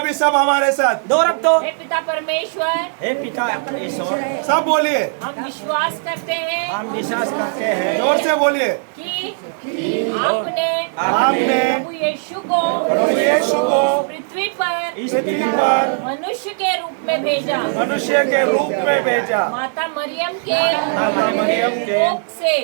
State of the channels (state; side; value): silent; left; digital silence